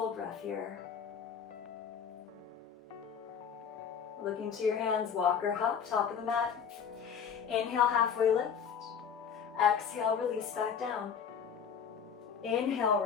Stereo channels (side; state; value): right; quieter; 7.2 dB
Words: breath here. Look into your hands, walk or hop, top of the mat. Inhale, halfway lift. Exhale, release back down. Inhale,